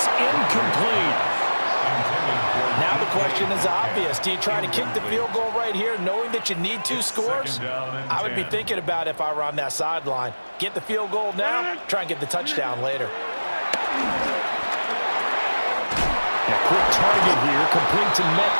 incomplete. Now the question is obvious. Do you try to kick the field goal right here knowing that you need 2 scores? I would be thinking about it if I were on that sideline. Get the field goal now, try and get the touchdown later. A quick target here, complete to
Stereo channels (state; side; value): inverted; both; correlation -1.00